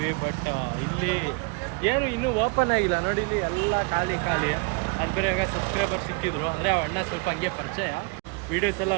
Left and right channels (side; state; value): left; quieter; 30.9 dB